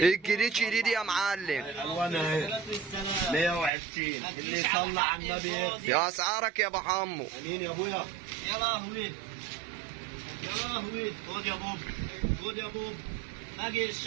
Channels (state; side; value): drops out; left; at 3.7 s